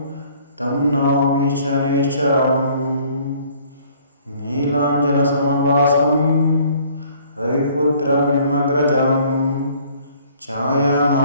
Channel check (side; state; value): both; inverted; correlation -0.57